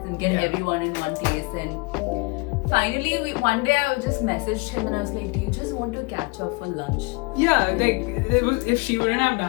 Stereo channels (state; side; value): quieter; right; 28.1 dB